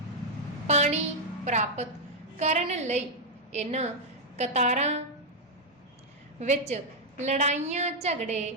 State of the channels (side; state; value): both; normal; correlation -0.02